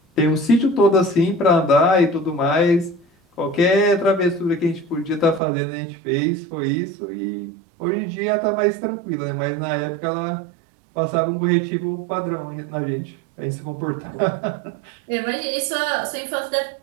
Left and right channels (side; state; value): left; drops out; at 5.4 s